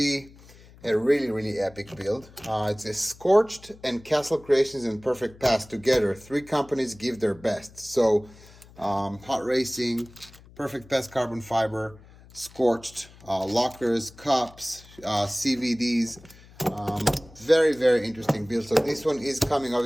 a really, really epic build. It's a Scorched and Castle Creations and Perfect Pass together. 3 companies give their best. So Hot Racing, Perfect Pass carbon fiber, Scorched, lockers, cups, CVDs. Very, very interesting build. So this one is coming,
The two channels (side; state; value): left; noise; hum, 23 dB below the sound